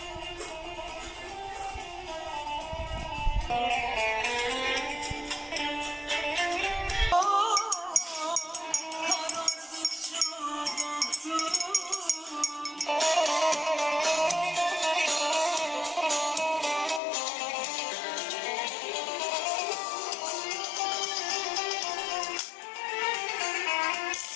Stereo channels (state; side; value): drops out; right; at 17.0 s